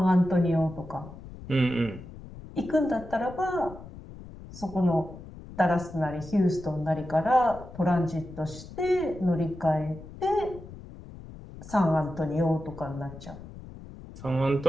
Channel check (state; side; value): noise; left; rumble, 15 dB below the sound